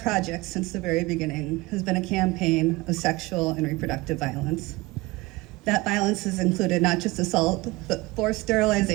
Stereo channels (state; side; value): quieter; left; 21.7 dB